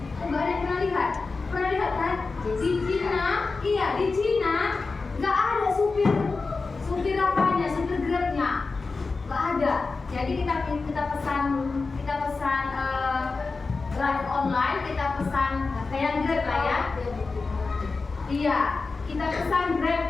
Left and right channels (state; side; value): quieter; right; 4.1 dB